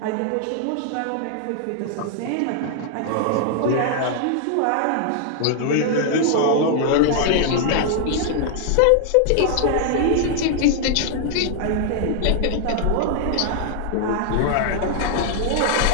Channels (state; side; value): different; both; correlation 0.00